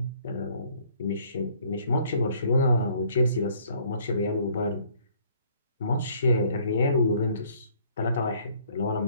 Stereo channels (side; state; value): both; inverted; correlation -0.61